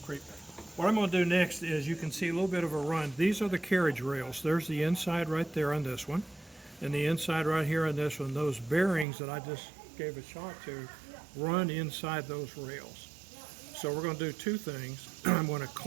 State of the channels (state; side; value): drops out; left; at 9.1 s